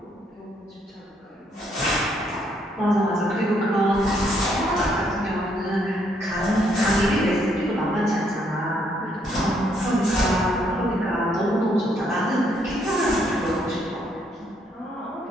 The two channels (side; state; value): both; normal; correlation 0.71